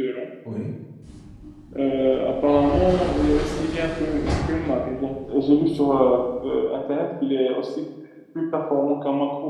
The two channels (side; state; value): both; identical; correlation 1.00